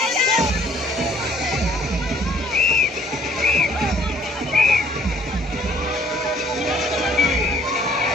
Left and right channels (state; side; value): normal; both; correlation 0.60